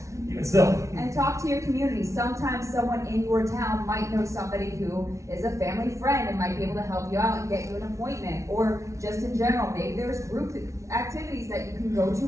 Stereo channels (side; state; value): left; late; 0.14 ms